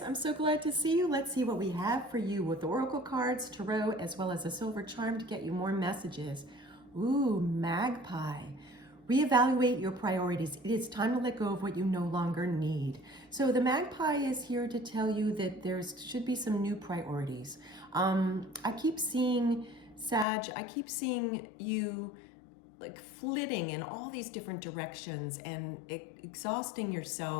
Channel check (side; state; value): right; drops out; at 20.2 s